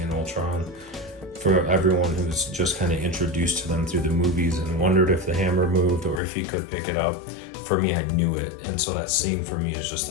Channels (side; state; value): right; drops out; at 6.2 s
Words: Ultron. For everyone who's just kind of introduced to them through the movies and wondered if the hammer moved or if he could pick it up, for me, I knew it. And so that scene for me is